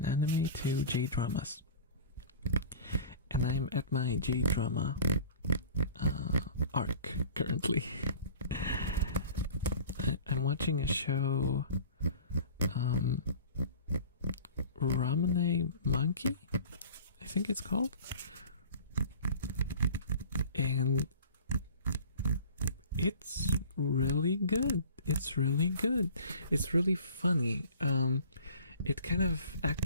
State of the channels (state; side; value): inverted; both; correlation -0.42